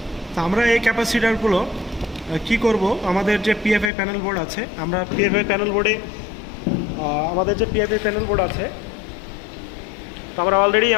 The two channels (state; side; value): drops out; right; at 3.9 s